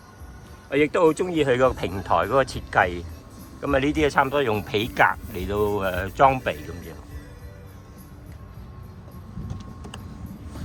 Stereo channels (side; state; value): both; identical; correlation 1.00